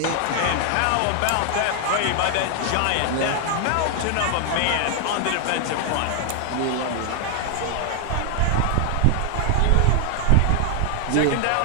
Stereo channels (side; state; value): both; different; correlation 0.00